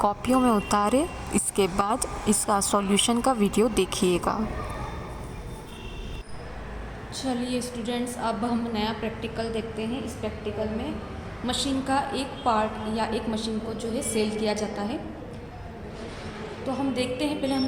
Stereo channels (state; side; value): identical; both; correlation 1.00